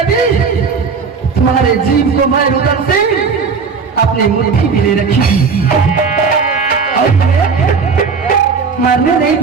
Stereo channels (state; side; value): quieter; left; 5.3 dB